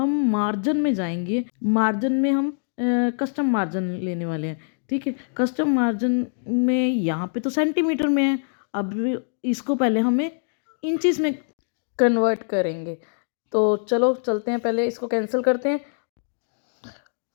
मार्जिन में जाएंगे। मार्जिन में हम कस्टम मार्जिन लेने वाले हैं। ठीक है, कस्टम मार्जिन में यहाँ पे तो सेंटीमीटर में है। अब इसको पहले हमें इंचेस में कन्वर्ट करेंगे। तो चलो चलते हैं, पहले इसको कैंसिल करते हैं।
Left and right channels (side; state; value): right; silent; digital silence